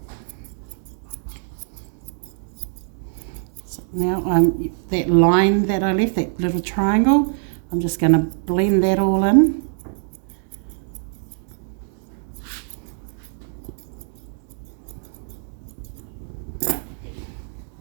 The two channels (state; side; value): silent; left; digital silence